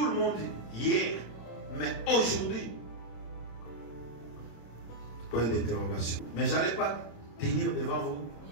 le monde hier, mais aujourd'hui, point d'interrogation. Mais je n'allais pas tenir devant vous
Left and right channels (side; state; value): right; late; 26 ms